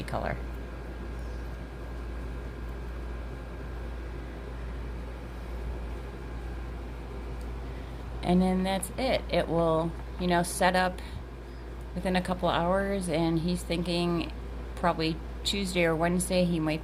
color. and then that's it. It will, you know, set up within a couple hours, and he's thinking probably Tuesday or Wednesday he might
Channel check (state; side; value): identical; both; correlation 1.00